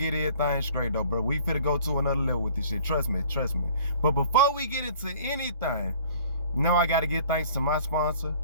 everything straight, though, bro. We finna go to another level with this shit. Trust me. But before we get into anything, I gotta give thanks to my sponsor,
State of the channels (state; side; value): inverted; both; correlation -0.51